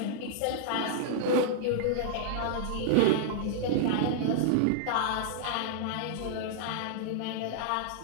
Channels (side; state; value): both; different; correlation -0.01